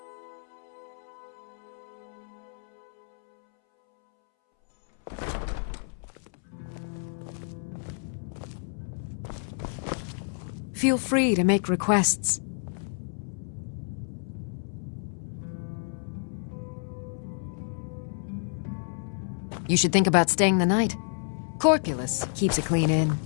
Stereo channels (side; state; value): right; silent; 58 dB below the other